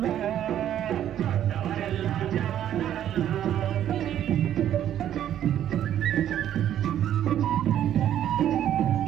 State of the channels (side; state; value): left; quieter; 10.9 dB